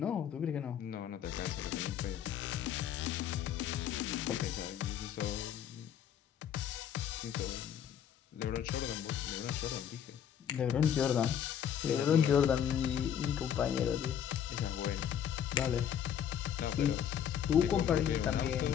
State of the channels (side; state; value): right; quieter; 9.1 dB